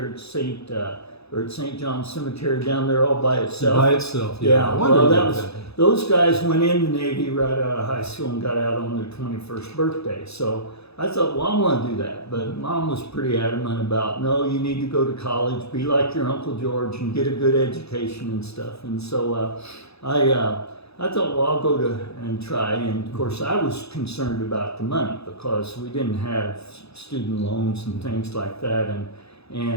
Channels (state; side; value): late; right; 0.79 ms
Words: at St. John's Cemetery down there all by itself. By itself, yeah. I wondered about that. Those guys went in the Navy right out of high school and got out on their 21st birthday. So I thought, well, I want to do that. But Mom was pretty adamant about, no, you need to go to college, be like your Uncle George and get a good education and stuff. And so I thought, well, I'll go and try. And of course, I was concerned about the money because we didn't have student loans and things like that.